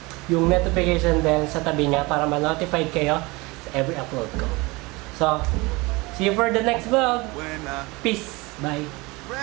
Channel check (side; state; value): left; quieter; 24.2 dB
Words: yung notification bell sa tabi niya para ma-notified kayo sa every upload ko. So, see you for the next vlog. Peace. Bye.